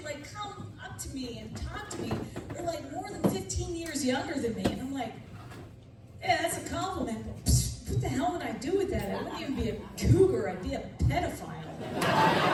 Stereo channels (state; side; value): identical; both; correlation 1.00